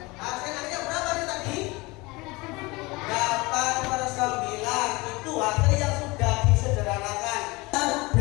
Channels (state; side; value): quieter; right; 23.8 dB